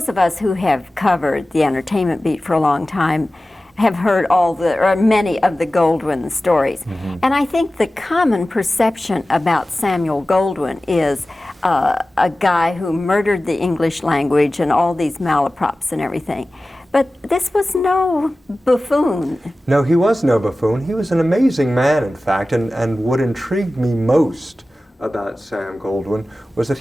of us who have covered the entertainment beat for a long time have heard many of the Goldwyn stories. Mm-hmm. And I think the common perception about Samuel Goldwyn is a guy who murdered the English language and all these malaprops and everything. But this was no buffoon. No, he was no buffoon. He was an amazing man, in fact, and what intrigued me most about Sam Goldwyn was that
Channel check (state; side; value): normal; both; correlation 0.96